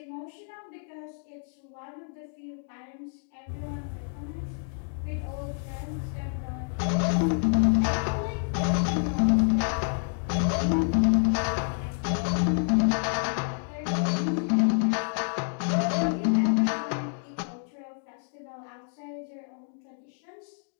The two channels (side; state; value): right; silent; 59 dB below the other